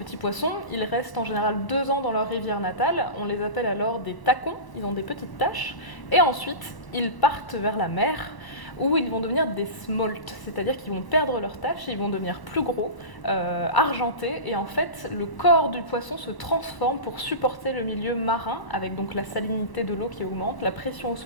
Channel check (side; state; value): right; late; 1.0 ms